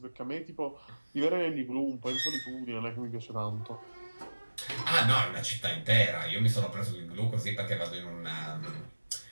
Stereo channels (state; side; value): inverted; both; correlation -1.00